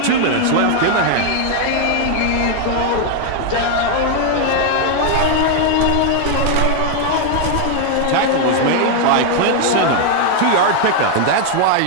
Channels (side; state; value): both; different; correlation 0.00